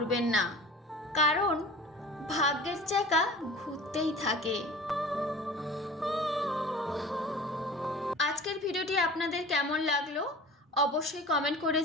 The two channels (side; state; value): both; normal; correlation 0.40